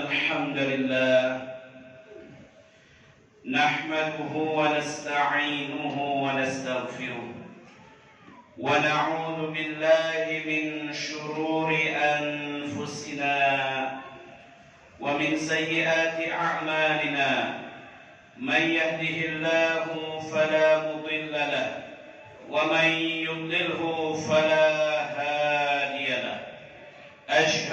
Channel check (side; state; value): both; identical; correlation 1.00